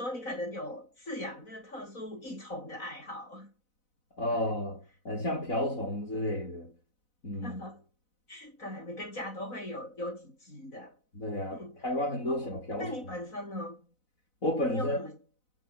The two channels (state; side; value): late; right; 4.0 ms